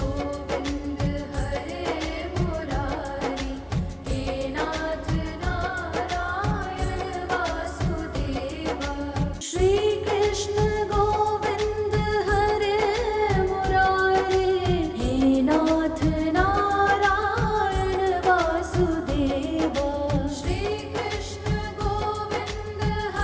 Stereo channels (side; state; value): both; identical; correlation 1.00